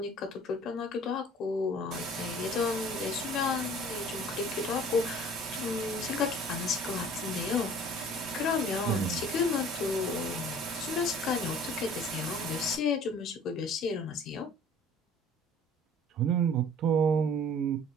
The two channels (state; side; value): normal; both; correlation 0.49